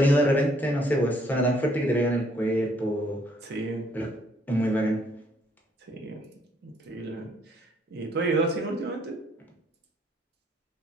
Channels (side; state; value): both; normal; correlation 0.66